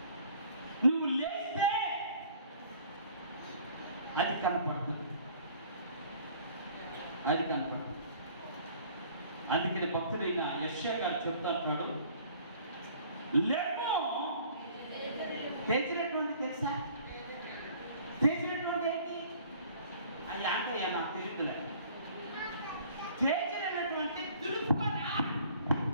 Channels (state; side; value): inverted; both; correlation -0.53